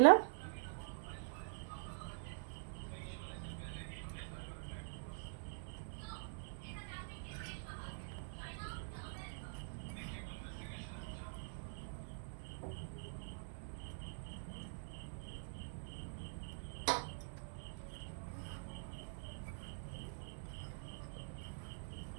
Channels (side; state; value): left; silent; digital silence